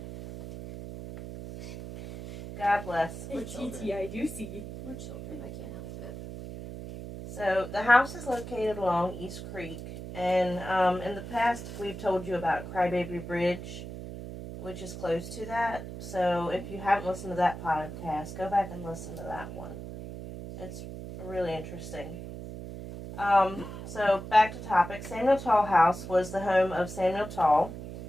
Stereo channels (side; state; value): right; noise; hum, 10 dB below the sound